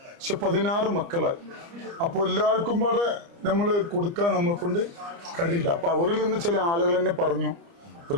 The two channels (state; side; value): late; left; 29 ms